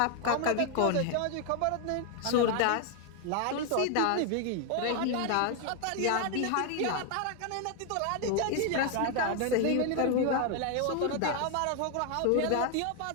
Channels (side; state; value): both; different; correlation 0.01